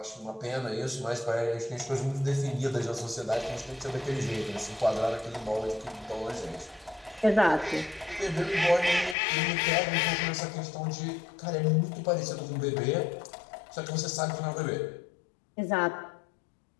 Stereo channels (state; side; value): drops out; right; at 9.2 s